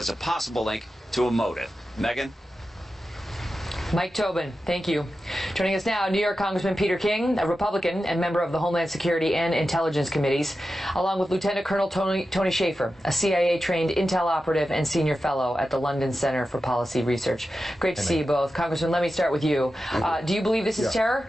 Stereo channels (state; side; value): normal; both; correlation 0.92